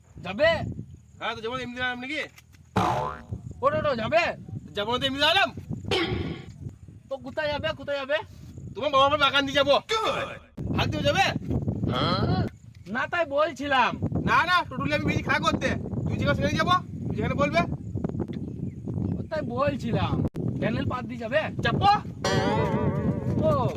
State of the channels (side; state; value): both; identical; correlation 1.00